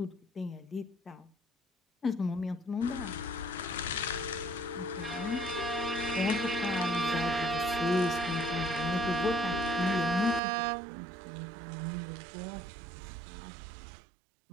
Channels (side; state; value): left; drops out; at 10.4 s